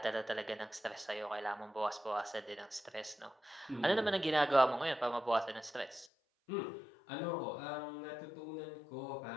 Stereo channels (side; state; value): right; drops out; at 6.1 s